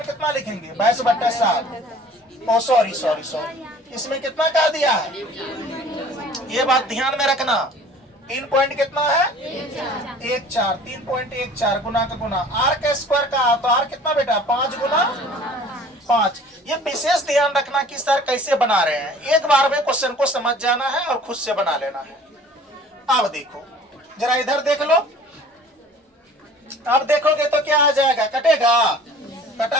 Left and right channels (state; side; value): normal; both; correlation 0.48